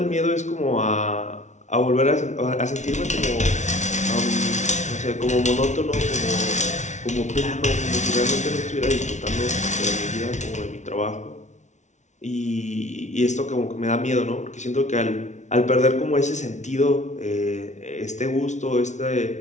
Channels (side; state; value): right; late; 0.34 ms